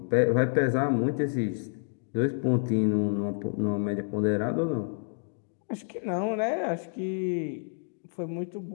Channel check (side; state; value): right; silent; digital silence